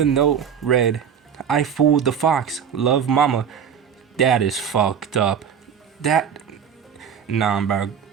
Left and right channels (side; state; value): left; quieter; 7.8 dB